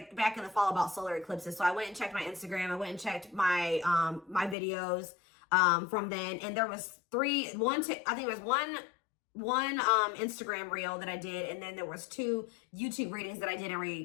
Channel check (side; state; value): right; drops out; at 4.5 s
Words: back in the fall about solar eclipses. So I went and checked my Instagram. I went and checked my my videos from then, and there was one Instagram reel that I did, and then there was 2 YouTube readings that I did in